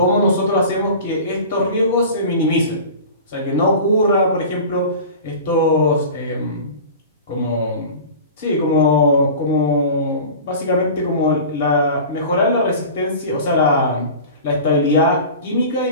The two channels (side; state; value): both; inverted; correlation -0.37